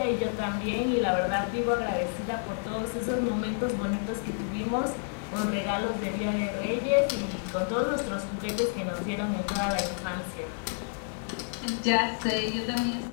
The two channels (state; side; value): silent; right; digital silence